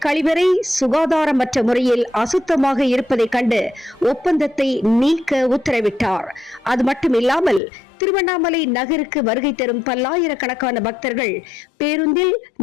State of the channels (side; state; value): right; drops out; at 7.6 s